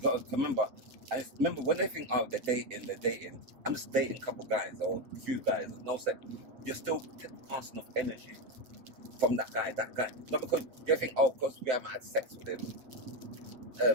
got to remember. I remember when they think, oh, they're dating. I'm just dating a couple guys or a few guys. No sex. You're still passing off energy from that guy. Not because you think, oh, because we haven't had sex with him,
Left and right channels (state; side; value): late; left; 7.8 ms